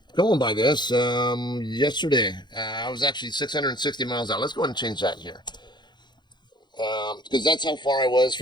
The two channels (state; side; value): late; right; 0.21 ms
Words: going by this, yesterday I was actually 660 miles out. Let's go ahead and change that here. Because that's how far I was